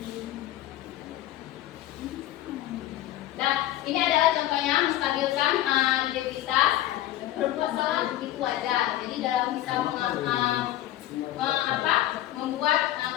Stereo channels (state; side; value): quieter; right; 14.2 dB